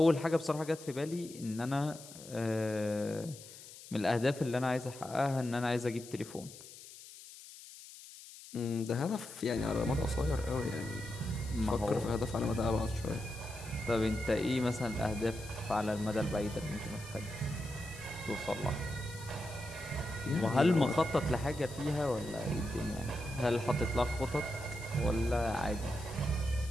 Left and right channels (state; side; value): noise; left; hiss, 16 dB below the sound